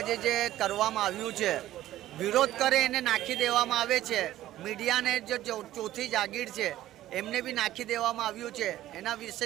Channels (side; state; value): left; quieter; 14.1 dB